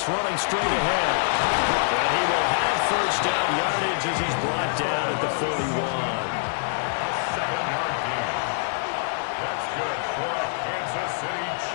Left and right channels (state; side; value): silent; right; digital silence